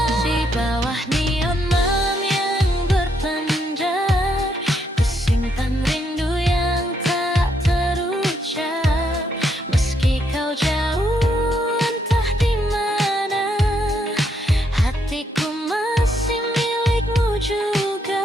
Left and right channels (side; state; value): both; normal; correlation 0.75